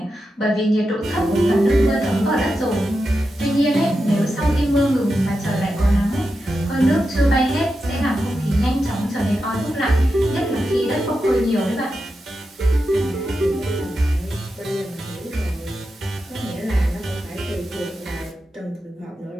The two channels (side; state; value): both; normal; correlation 0.89